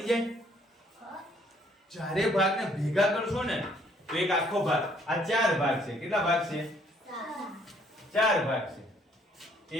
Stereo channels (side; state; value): both; normal; correlation 0.64